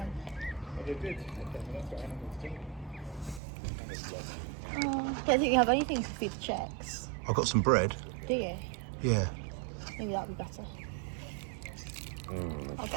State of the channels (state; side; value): drops out; left; at 3.4 s